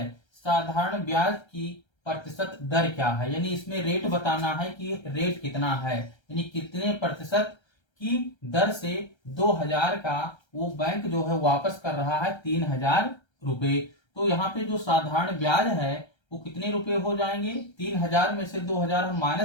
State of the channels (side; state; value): right; late; 1.3 ms